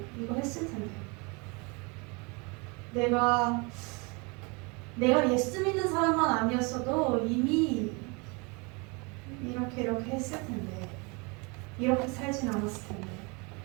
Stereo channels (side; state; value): left; quieter; 29.6 dB